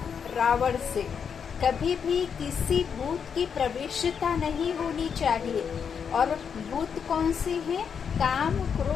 रावण से कभी भी किसी भूत की प्रवेशता नहीं होनी चाहिए। और भूत कौन से हैं? काम,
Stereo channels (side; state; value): right; quieter; 6.9 dB